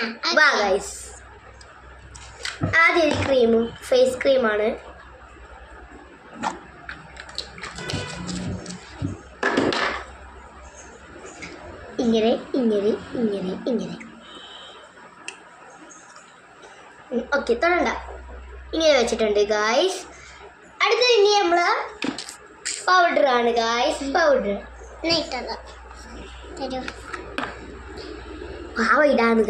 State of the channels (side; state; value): both; identical; correlation 1.00